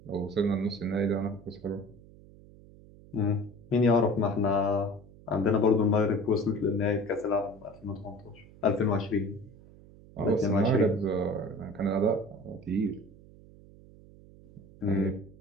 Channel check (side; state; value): right; noise; hum, 22 dB below the sound